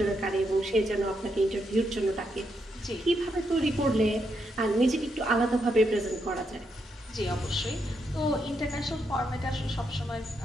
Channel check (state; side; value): normal; both; correlation 0.80